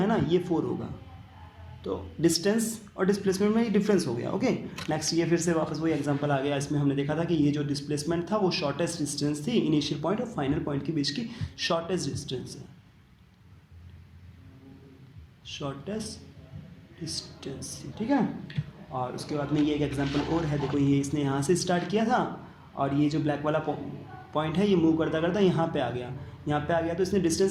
ना ये 4 होगा, तो डिस्टेंस और डिस्प्लेसमेंट में ये डिफरेंस हो गया। ओके, नेक्स्ट ये फिर से वापस वही एग्जांपल आ गया। इसमें हमने देखा था कि ये जो डिस्प्लेसमेंट था वो शॉर्टेस्ट डिस्टेंस थी, इनिशियल पॉइंट और फाइनल पॉइंट के बीच की शॉर्टेस्ट डिस्टेंस है, शॉर्टेस्ट डिस्टेंस, ठीक है। और उसके बाद में ये एक एग्जांपल और है, देखो ये इसने यहाँ से स्टार्ट किया था और ये जो ब्लैक वाला पॉइंट है ये मूव करता करता यहाँ पे आ गया, यहाँ पे आ गया। तो इसने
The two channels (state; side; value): identical; both; correlation 1.00